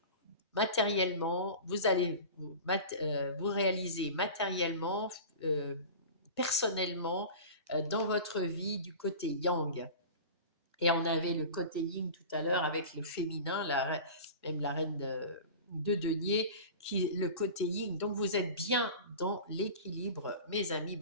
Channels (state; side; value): inverted; both; correlation -0.34